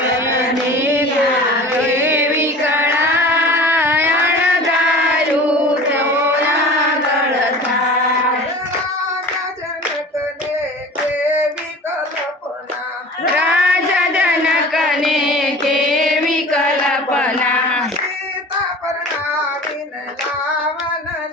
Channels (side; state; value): both; normal; correlation 0.39